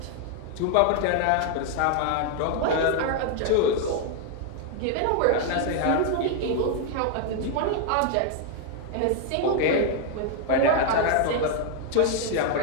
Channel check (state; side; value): different; both; correlation 0.00